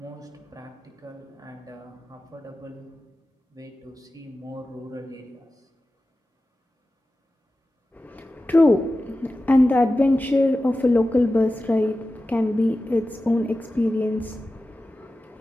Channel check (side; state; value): both; normal; correlation 0.94